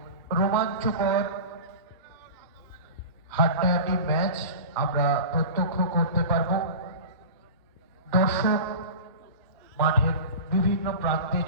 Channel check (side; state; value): both; inverted; correlation -0.33